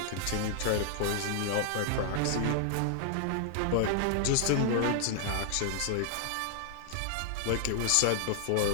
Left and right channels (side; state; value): both; different; correlation 0.00